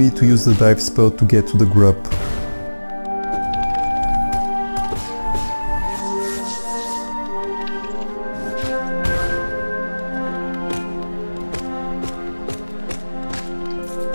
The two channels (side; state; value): both; inverted; correlation -1.00